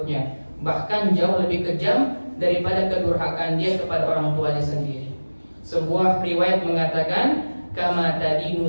bahkan jauh lebih kejam daripada kedurhakaan dia kepada orang tuanya sendiri. Sebuah riwayat mengatakan, kama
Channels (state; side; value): inverted; both; correlation -1.00